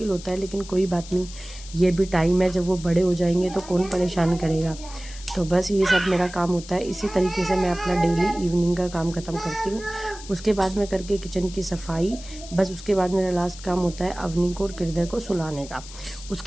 होता है, लेकिन कोई बात नहीं, ये भी टाइम है। जब वो बड़े हो जाएंगे तो कौन परेशान करेगा। तो बस ये सब मेरा काम होता है। इसी तरीके से मैं अपना डेली इवनिंग का काम ख़त्म करती हूँ। उसके बाद में करके किचन की सफाई, बस उसके बाद मेरा लास्ट काम होता है अवनी को और हृदय को सुलाने का।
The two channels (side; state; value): left; noise; hiss, 16 dB below the sound